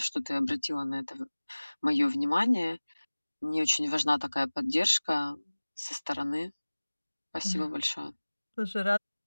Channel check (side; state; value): both; inverted; correlation -1.00